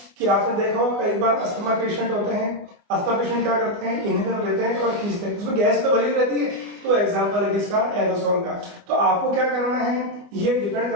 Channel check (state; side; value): late; left; 24 ms